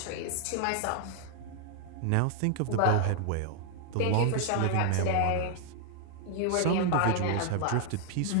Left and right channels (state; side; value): different; both; correlation 0.00